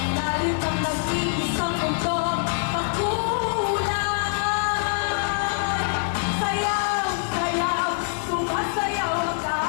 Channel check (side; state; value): right; silent; digital silence